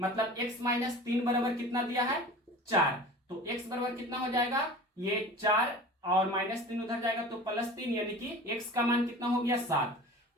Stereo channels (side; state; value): both; normal; correlation 0.38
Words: x - 3 बराबर कितना दिया है 4, तो x बराबर कितना हो जाएगा, ये 4 और -3 उधर जाएगा तो +3, यानी कि x का मान कितना हो गया 7,